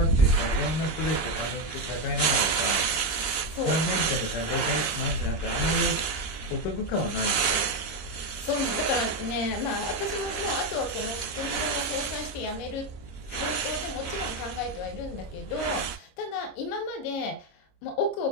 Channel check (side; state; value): right; late; 25 ms